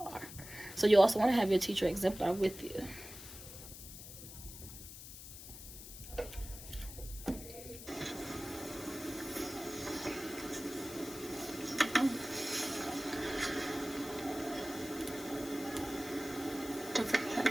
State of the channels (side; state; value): left; noise; hiss, 13 dB below the sound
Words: So you also want to have your teacher exemplar with you. Don't forget that